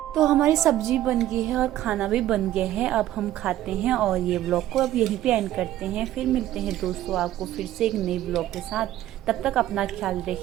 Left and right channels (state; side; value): quieter; left; 13.6 dB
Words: तो हमारी सब्जी बन गई है और खाना भी बन गया है। अब हम खाते हैं और ये ब्लॉग को अब यहीं पे एंड करते हैं। फिर मिलते हैं दोस्तों आपको फिर से एक नई ब्लॉग के साथ। तब तक अपना ख्याल